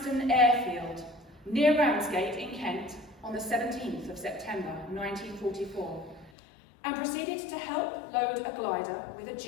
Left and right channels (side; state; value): right; drops out; at 6.3 s